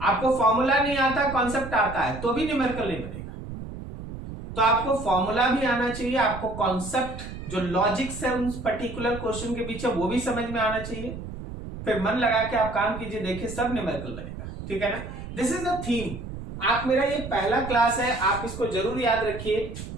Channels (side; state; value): right; noise; rumble, 10 dB below the sound